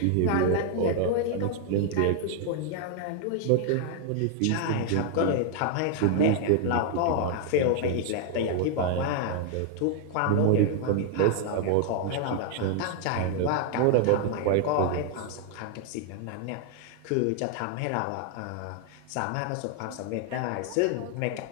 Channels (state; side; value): different; both; correlation 0.00